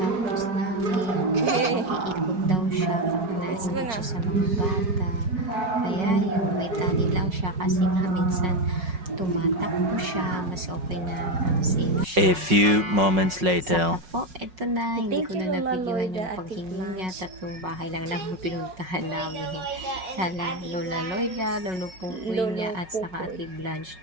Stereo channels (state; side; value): late; left; 5.4 ms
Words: namin, mag-iikot daw siya, nainggit siya sa mga bata. Kaya yun, may tali lang siya kasi nga minsan tumatakbo siya, mas okay na ang safe siya. A few moments Saka later. po, eto na, hindi Thank ko you, na Lola nabigyan yung Loida, paghingi Ate niya. Blanche. 3 bahay lang naman pinuntahan namin. Kala Lola Loida, Lolo Pupoy niya, at saka Ate Blanche.